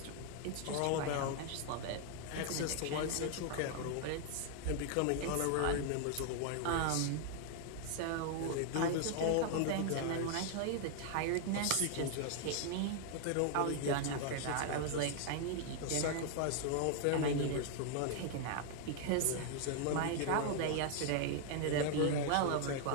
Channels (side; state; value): both; different; correlation 0.00